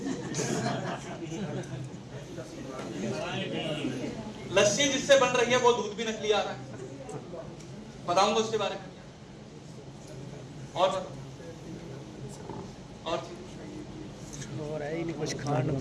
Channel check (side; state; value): both; identical; correlation 1.00